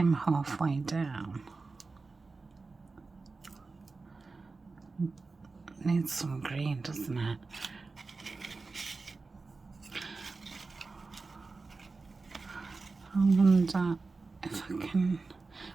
halfway down. Needs some green, doesn't it? I wonder if I can.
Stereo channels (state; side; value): quieter; left; 3.9 dB